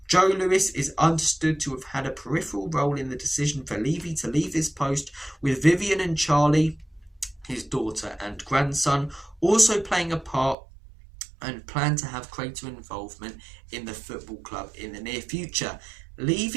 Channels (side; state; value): left; drops out; at 10.6 s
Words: Joe Lewis is understood to have had a peripheral role in the decision for Levy to leave his post, with Vivian and Charlie, his daughter and grandson, also playing a part and plan to have greater involvement in the football club in the near future.